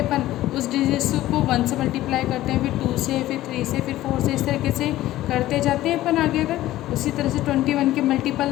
अपन उस डिजिट्स को 1 से मल्टीप्लाई करते हैं, फिर 2 से, फिर 3 से, फिर 4 से, इस तरीके से करते जाते हैं अपन आगे। अगर उसी तरह से 21 के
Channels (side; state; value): right; quieter; 15.2 dB